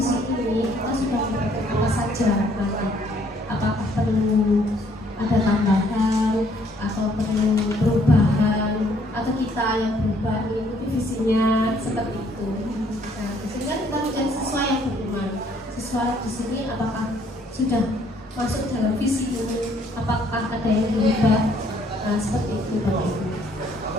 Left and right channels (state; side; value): normal; both; correlation 0.64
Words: ini kita sudah mendapatkan apa saja nanti. Apakah perlu ada tambahan atau perlu perubahan atau kita yang berubah mengikuti visinya seperti itu. Nah, sehingga kita mencari siswa yang beriman. Siswa di sini apakah sudah masuk dalam visi ini? Apakah ada yang berubah? Nah, seperti itu Bapak Ibu.